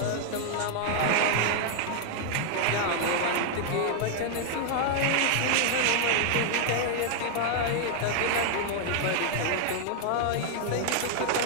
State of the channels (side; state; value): both; different; correlation 0.00